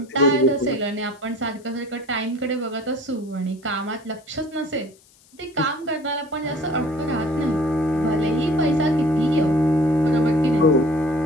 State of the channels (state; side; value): noise; left; hiss, 29 dB below the sound